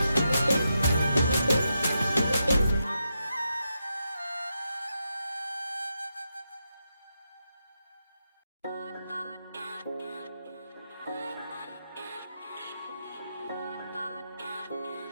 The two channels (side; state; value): both; inverted; correlation -0.85